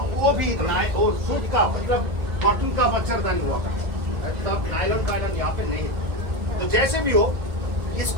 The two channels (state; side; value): late; left; 1.7 ms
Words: वो भी और सूत का, मतलब कॉटन का मच्छरदानी हुआ करता था, तब नायलॉन वायलॉन यहाँ पे नहीं था। तो जैसे भी हो,